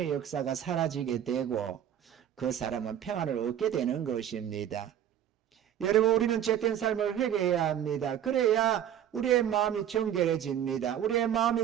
역사가 사라지게 되고 그 사람은 평안을 얻게 되는 것입니다. 여러분, 우리는 죄된 삶을 회개해야 합니다. 그래야 우리의 마음이 정결해집니다. 우리의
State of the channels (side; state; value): left; quieter; 10.3 dB